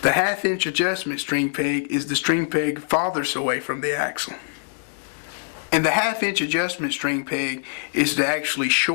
The 1/2 inch adjustment string peg is the string peg farthest away from the axle. And the 1/2 inch adjustment string peg is to actually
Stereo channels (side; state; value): right; silent; digital silence